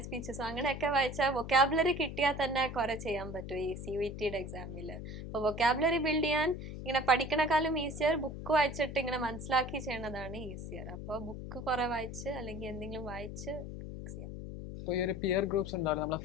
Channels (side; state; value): left; noise; hum, 8 dB below the sound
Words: സ്പീച്ചസോ അങ്ങനെയൊക്കെ വായിച്ചാൽ വൊക്കാബുലറി കിട്ടിയാൽ തന്നെ കുറെ ചെയ്യാൻ പറ്റും ഈ CUT എക്സാമിൽ. അപ്പൊ വൊക്കാബുലറി ബിൽഡ് ചെയ്യാൻ ഇങ്ങനെ പഠിക്കണക്കാളും ഈസിയർ ബുക്ക് വായിച്ചിട്ട് ഇങ്ങനെ മനസ്സിലാക്കി ചെയ്യണതാണ് ഈസിയർ. അപ്പോൾ ബുക്ക് കുറെ വായിച്ച് അല്ലെങ്കിൽ എന്തെങ്കിലും വായിച്ച് ഫിക്സ് ചെയ്യാം. ഇപ്പോൾ ഈ ഒരു പിയർ ഗ്രൂപ്പ്സ് ഉണ്ടാവില്ല, നമ്മളെ